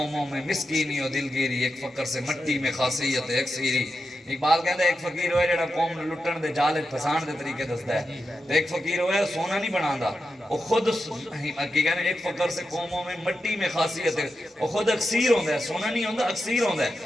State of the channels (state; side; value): normal; both; correlation 0.89